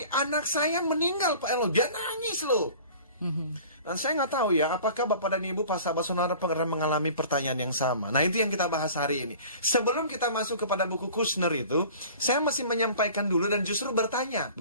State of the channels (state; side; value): inverted; both; correlation -0.44